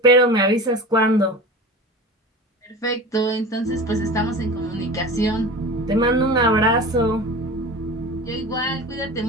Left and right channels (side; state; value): both; normal; correlation 0.33